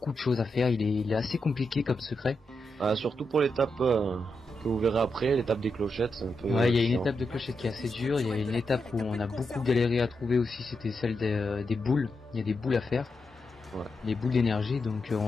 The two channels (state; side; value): normal; both; correlation 0.85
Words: de choses à faire, il est assez compliqué comme secret. Surtout pour l'étape que vous verrez après, l'étape des clochettes, c'est un peu... Ouais, il y a une étape de clochette qui est assez dure, il y a une étape où on a beaucoup galéré à trouver aussi, c'était celle des boules, il y a des boules à faire. Ouais. Les boules d'énergie, donc on